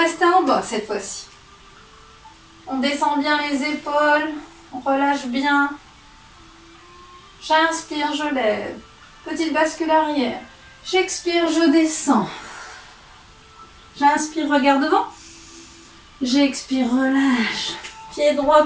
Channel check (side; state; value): both; identical; correlation 1.00